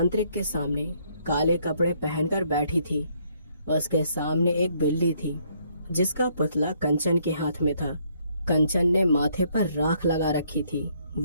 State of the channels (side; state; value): both; inverted; correlation -0.68